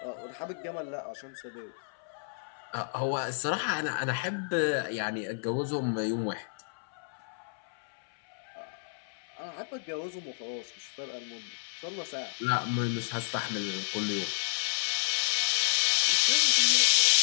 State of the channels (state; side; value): silent; right; 57 dB below the other